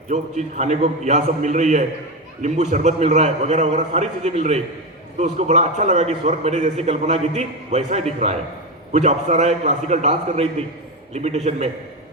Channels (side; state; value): both; normal; correlation 0.15